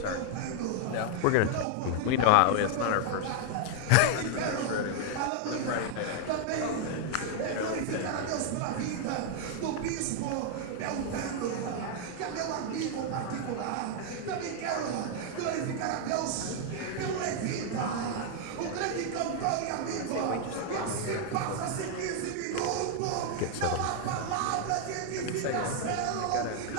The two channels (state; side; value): different; both; correlation 0.00